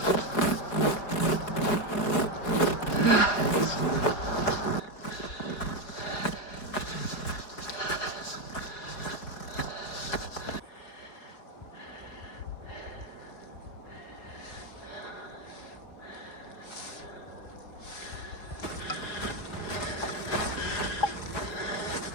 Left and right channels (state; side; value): late; right; 4.6 ms